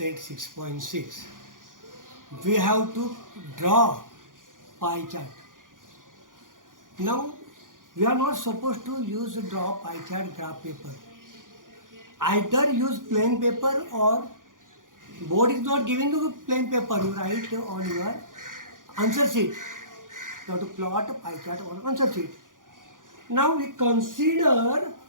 6.6. we have to draw pie chart. Now we are not supposed to use draw pie chart graph paper. Either use plain paper or board is not giving you plain paper. You write on your answer sheet. You have to plot a pie chart on answer sheet. Now we consider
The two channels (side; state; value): left; late; 0.89 ms